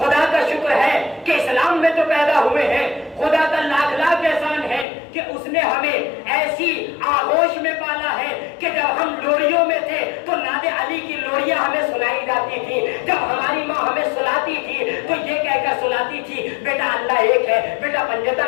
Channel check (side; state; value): right; drops out; at 4.9 s